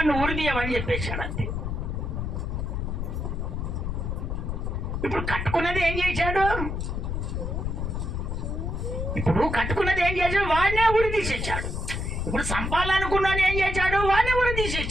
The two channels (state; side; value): noise; left; rumble, 3 dB below the sound